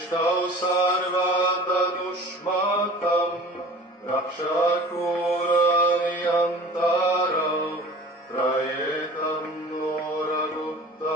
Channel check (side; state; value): both; normal; correlation 0.42